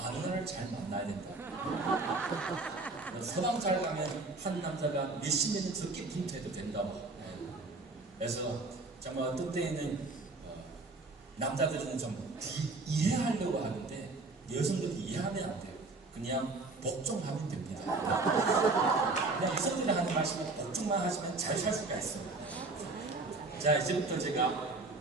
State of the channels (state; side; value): quieter; left; 3.5 dB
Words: 잘 만나야 된다. 서방 잘 가면 한 남자가 몇십 년은 적게 분투해도 된다고. 네. 그래서 정말 어떤 때에는 남자들은 좀 이해하려고 하는데 여성들이 이해하면 안 돼요. 그냥 복종하면 됩니다. 그냥 여성들이 하는 말씀은 복종만 하시면 잘 살 수가 있습니다. 자, 이제부터 제가